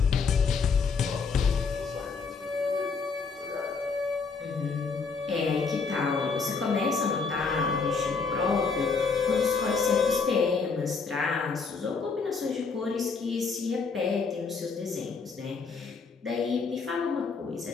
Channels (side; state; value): right; quieter; 4.9 dB